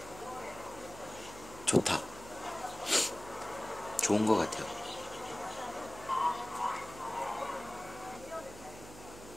좋다. 좋은 것 같아요.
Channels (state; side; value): noise; right; hum, 15 dB below the sound